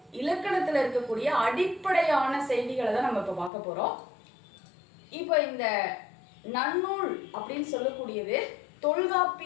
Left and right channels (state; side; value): drops out; right; at 3.5 s